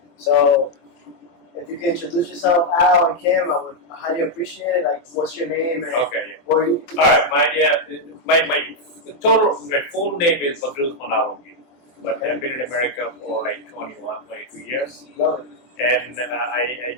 So if you can introduce yourself, Al and Kim, I would highly appreciate it. Like, what's your name? And Okay, yeah. where you? All right, my full name is Badruz Manalongi, but I've been in America for like 21, 22 years, Love it. and I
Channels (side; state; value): right; late; 23 ms